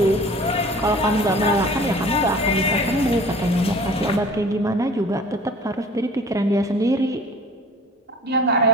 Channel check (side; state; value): both; normal; correlation 0.46